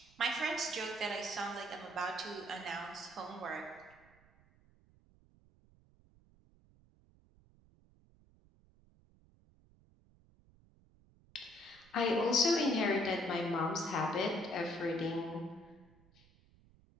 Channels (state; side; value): noise; right; rumble, 29 dB below the sound